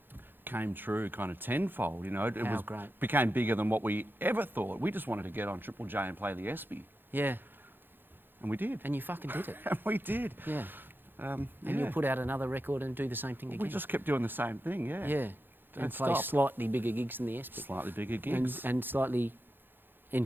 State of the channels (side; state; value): left; late; 0.098 ms